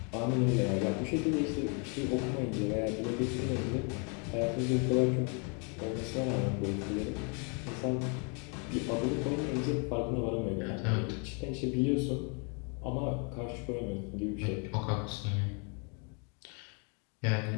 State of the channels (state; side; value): quieter; right; 36.3 dB